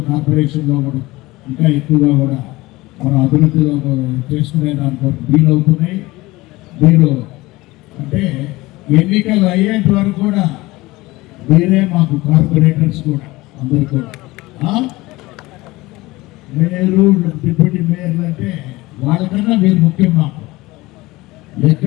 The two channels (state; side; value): quieter; right; 20.3 dB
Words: కార్పొరేషన్లో కూడా ఇంకా ఎక్కువగా కూడా మనం అభివృద్ధిలో చేసుకునే దానికి వీలవుతున్నాయి. మీరు అంటే ఎన్నికలు అయ్యేంత వరకు కూడా మీరే మాకు కార్పొరేటర్స్ కూడా అందరు కూడా మేయరు, డిప్యూటీ మేయర్లు అంటే వాళ్ళకన్నా మీరు ముఖ్యం. మాకు